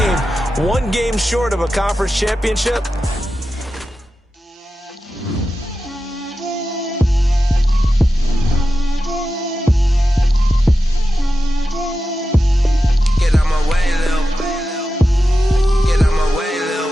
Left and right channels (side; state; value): both; normal; correlation 0.92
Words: one game short of a conference championship.